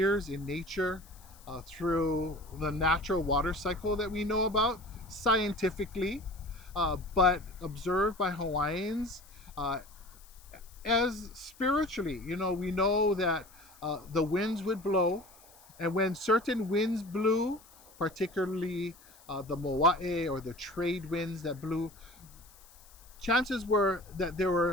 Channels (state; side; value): noise; left; hiss, 24 dB below the sound